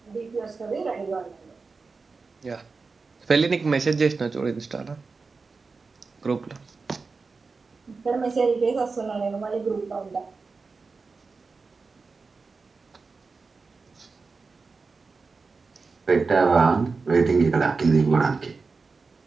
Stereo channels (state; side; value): quieter; left; 4.4 dB